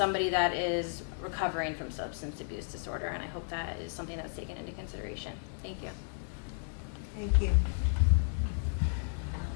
that is recovering from substance abuse disorder. And I hope that is something that's taken into consideration. Thank you. Thank you.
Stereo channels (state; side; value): silent; right; digital silence